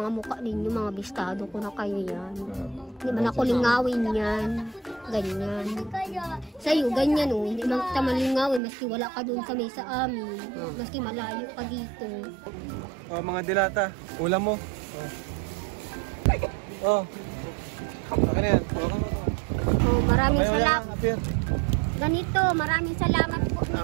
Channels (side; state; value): left; drops out; at 8.6 s